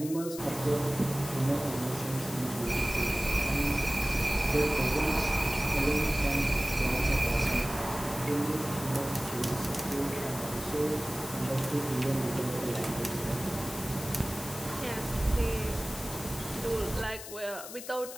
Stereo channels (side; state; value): left; noise; hiss, 11 dB below the sound